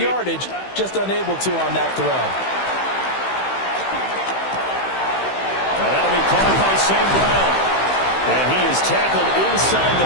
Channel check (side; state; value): right; late; 15 ms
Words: just unable to on that throw. Now that'll be caught by St. Brown. And he is tackled inside the